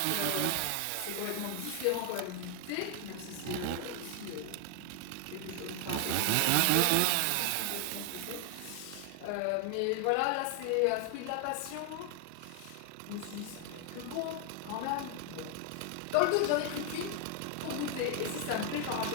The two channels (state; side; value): different; both; correlation 0.00